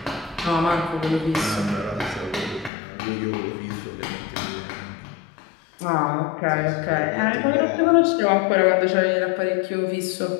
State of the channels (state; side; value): drops out; right; at 2.7 s